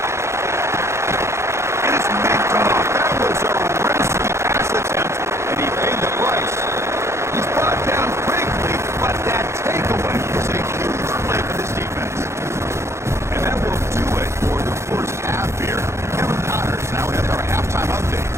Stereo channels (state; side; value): late; left; 0.13 ms